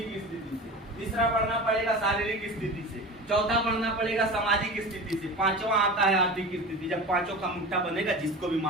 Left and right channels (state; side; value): normal; both; correlation 0.32